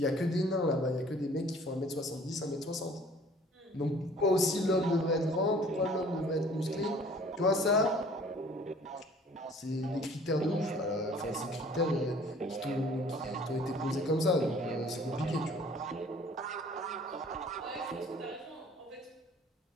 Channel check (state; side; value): normal; both; correlation 0.52